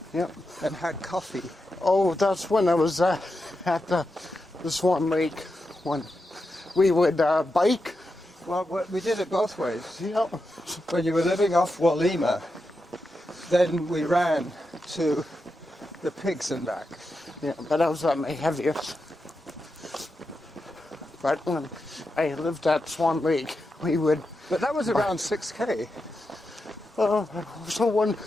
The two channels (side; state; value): both; normal; correlation 0.88